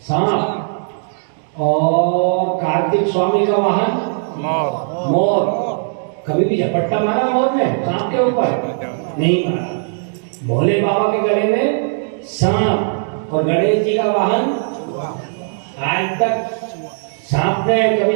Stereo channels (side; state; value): left; silent; digital silence